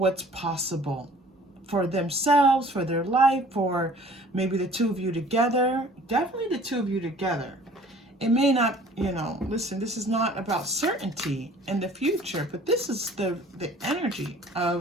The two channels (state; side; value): normal; both; correlation 0.51